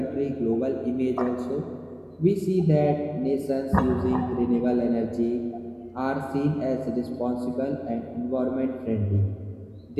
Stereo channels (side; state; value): both; identical; correlation 1.00